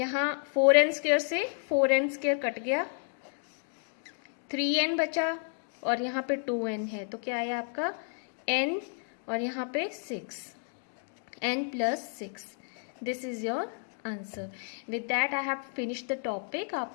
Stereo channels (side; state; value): right; silent; 57 dB below the other